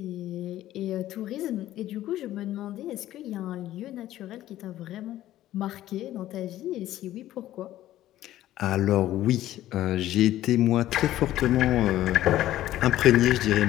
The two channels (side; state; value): right; quieter; 13.9 dB